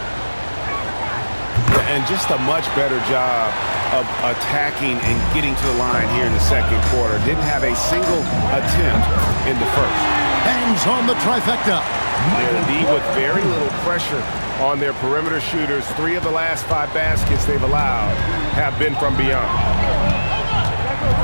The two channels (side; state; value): both; inverted; correlation -1.00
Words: And just a much better job of attacking and getting to the line here in the second quarter. Didn't have a single attempt in the first. Hangs on the trifecta. They're indeed with very little pressure on their perimeter shooters. 3 of the last 5 baskets they've allowed have been from beyond.